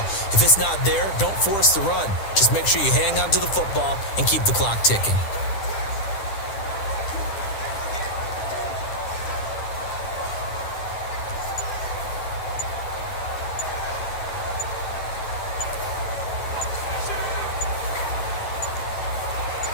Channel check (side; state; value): right; late; 9.9 ms